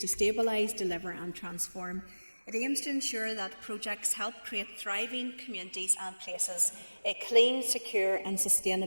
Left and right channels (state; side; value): inverted; both; correlation -1.00